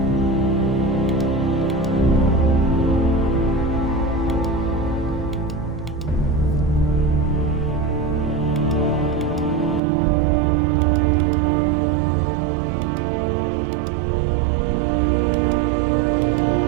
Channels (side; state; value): left; drops out; at 9.8 s